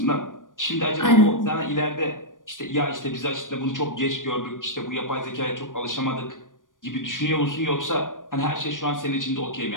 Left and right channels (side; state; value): right; late; 0.88 ms